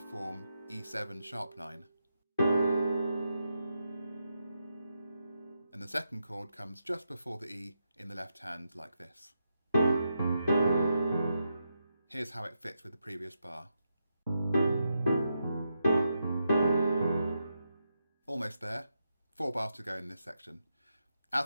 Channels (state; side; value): inverted; both; correlation -0.85